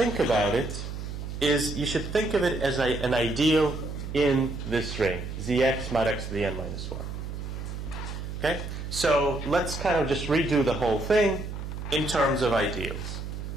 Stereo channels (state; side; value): noise; right; hum, 7 dB below the sound